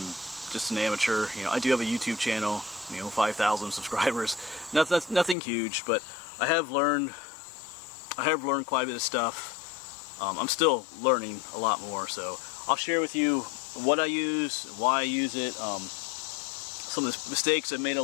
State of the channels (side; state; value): right; drops out; at 5.4 s